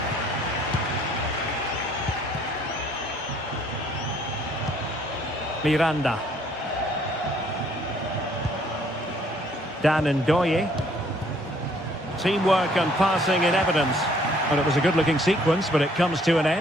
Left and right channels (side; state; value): both; normal; correlation 0.63